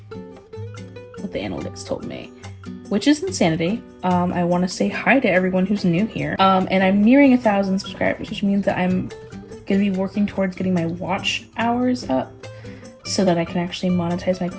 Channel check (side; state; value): both; identical; correlation 1.00